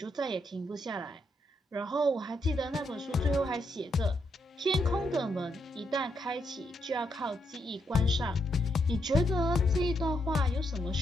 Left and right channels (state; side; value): normal; both; correlation 0.79